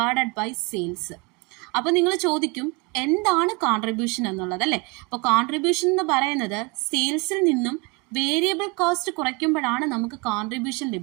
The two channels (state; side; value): quieter; left; 27.5 dB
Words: ബൈ സെയിൽസ്. അപ്പോൾ നിങ്ങൾ ചോദിക്കും എന്താണ് കോൺട്രിബ്യൂഷൻ എന്നുള്ളത് അല്ലേ? അപ്പോൾ കോൺട്രിബ്യൂഷൻ എന്ന് പറയുന്നത് സെയിൽസിൽ നിന്നും വേരിയബിൾ കോസ്റ്റ് കുറയ്ക്കുമ്പോഴാണ് നമുക്ക് കോൺട്രിബ്യൂഷൻ